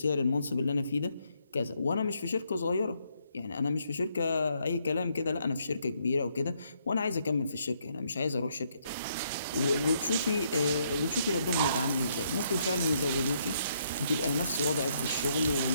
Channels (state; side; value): inverted; both; correlation -0.73